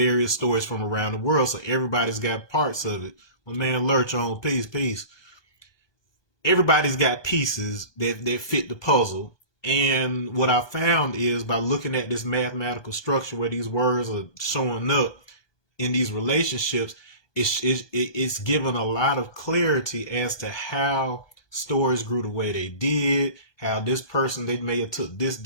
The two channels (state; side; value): late; right; 1.2 ms